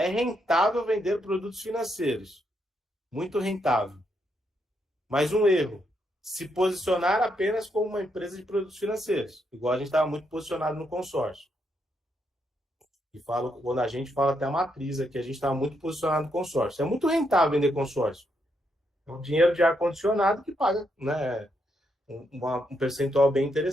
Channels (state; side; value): normal; both; correlation 0.79